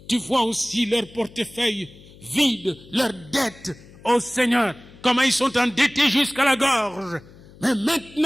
Tu vois aussi leur portefeuille vide, leurs dettes. Oh Seigneur, comment ils sont endettés jusqu'à la gorge. Mais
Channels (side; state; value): left; noise; hum, 22 dB below the sound